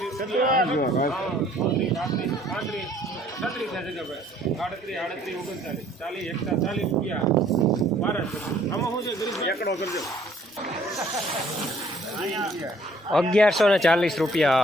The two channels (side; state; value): both; normal; correlation 0.59